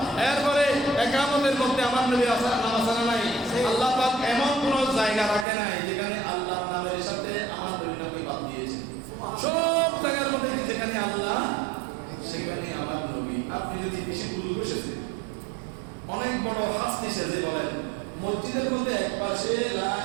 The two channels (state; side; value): drops out; left; at 5.5 s